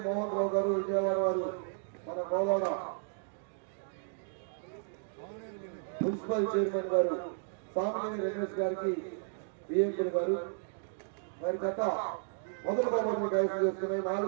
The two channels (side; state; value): left; silent; digital silence